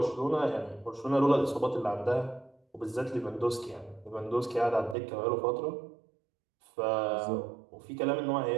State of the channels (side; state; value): left; drops out; at 5.0 s